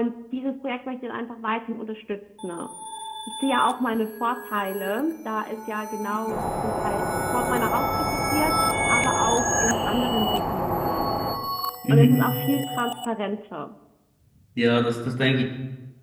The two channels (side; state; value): both; identical; correlation 1.00